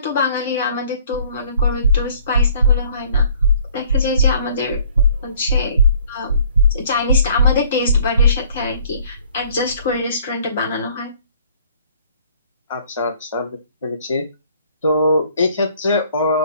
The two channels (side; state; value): both; inverted; correlation -0.56